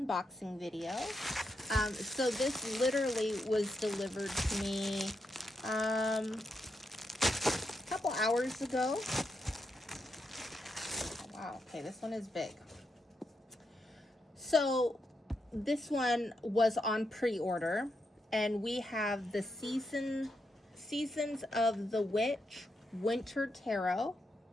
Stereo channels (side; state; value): both; normal; correlation 0.82